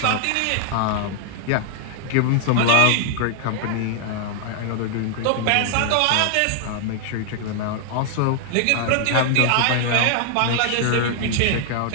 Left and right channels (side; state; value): both; different; correlation 0.00